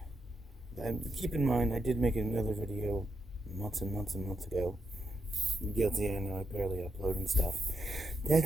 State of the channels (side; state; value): both; normal; correlation 0.82